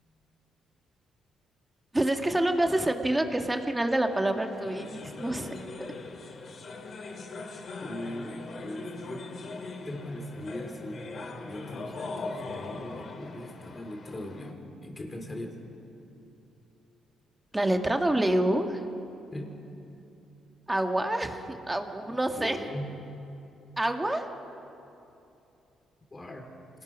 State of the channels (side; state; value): both; normal; correlation 0.93